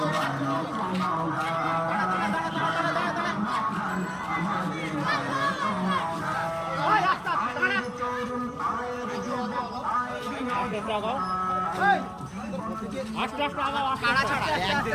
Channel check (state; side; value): identical; both; correlation 1.00